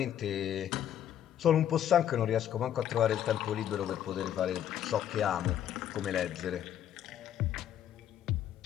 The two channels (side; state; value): right; quieter; 10.6 dB